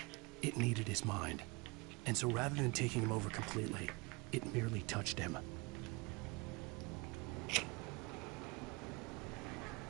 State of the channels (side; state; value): left; quieter; 27.3 dB